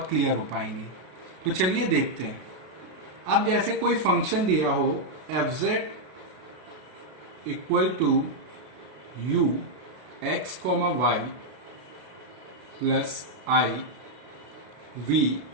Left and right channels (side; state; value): left; late; 32 ms